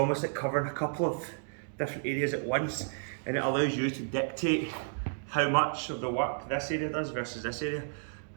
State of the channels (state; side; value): silent; left; digital silence